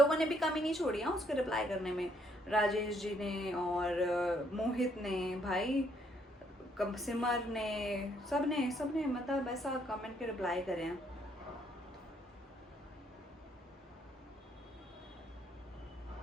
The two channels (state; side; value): normal; both; correlation 0.69